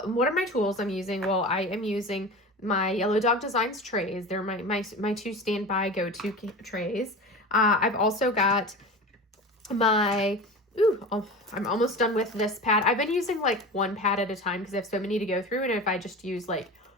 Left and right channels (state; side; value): normal; both; correlation 0.32